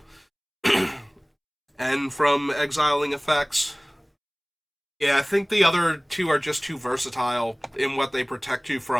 And from exiling effects. Yeah, I think the other two are just too versatile in what they protect you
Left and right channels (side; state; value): both; identical; correlation 1.00